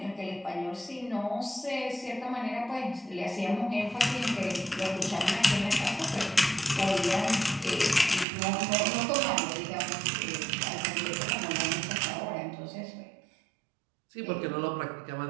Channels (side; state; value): left; drops out; at 8.2 s